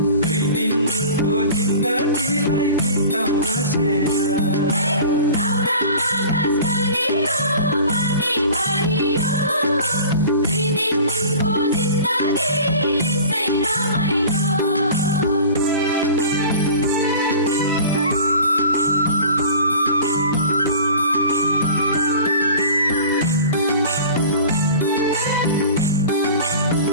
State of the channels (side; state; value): both; inverted; correlation -0.41